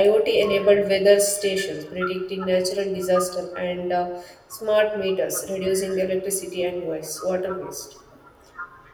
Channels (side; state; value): both; identical; correlation 1.00